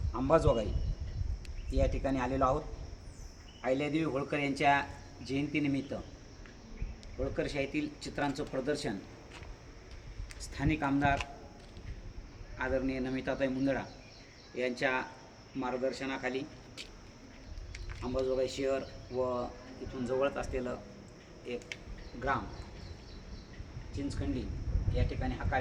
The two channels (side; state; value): both; identical; correlation 1.00